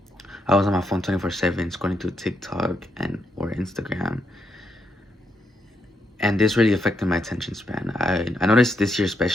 I was on my phone 24/7 scrolling through TikTok and or Instagram, and this really affected my attention span. I noticed this year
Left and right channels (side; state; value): both; normal; correlation 0.80